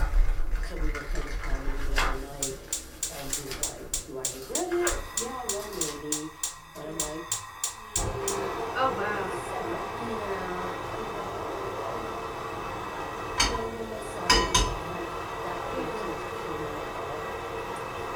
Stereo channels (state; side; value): identical; both; correlation 1.00